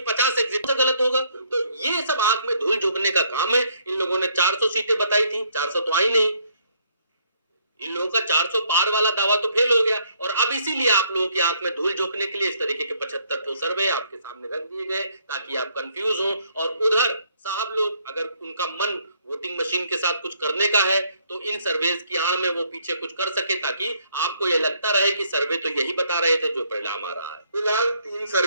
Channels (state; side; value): inverted; both; correlation -0.68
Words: 50 एग्जिट से गलत होगा। तो ये सब आंख में धूल झोंकने का काम है। इन लोगों ने 400 सीटें बताई थी, 400 तो आई नहीं। इन लोगों का 400 पार वाला दावा तो फेल हो गया। और अब इसीलिए आप लोगों की आंख में धूल झोंकने के लिए इस तरीके के 75 ठो सर्वे आपके सामने रख दिए गए ताकि आप कंफ्यूज हो। और उधर साहब लोग, अगर उनका मन वोटिंग मशीन के साथ कुछ करने का है तो इन सर्वेज की आड़ में वो पीछे कुछ कर सके, ताकि आपको ये लगता रहे कि सर्वे तो यही बता रहे थे जो परिणाम आ रहा है। फिलहाल 3